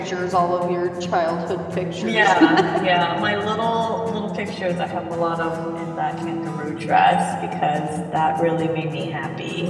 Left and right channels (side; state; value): both; identical; correlation 1.00